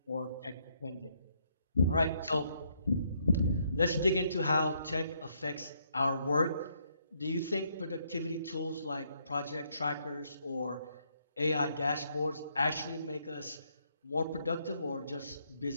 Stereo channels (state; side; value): inverted; both; correlation -0.72